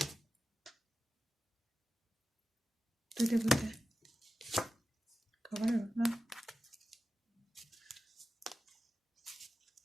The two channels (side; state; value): both; normal; correlation 0.93